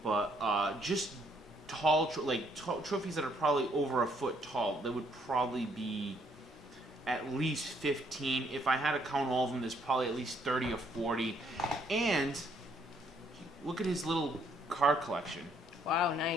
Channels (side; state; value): both; normal; correlation 0.69